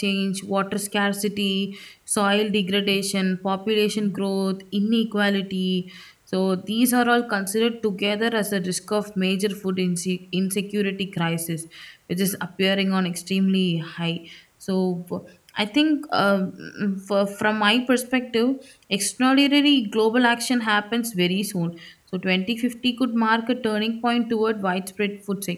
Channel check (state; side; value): identical; both; correlation 1.00